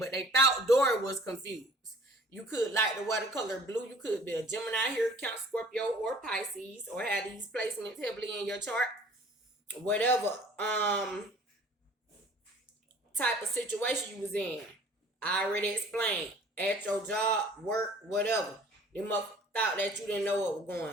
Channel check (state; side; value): normal; both; correlation 0.51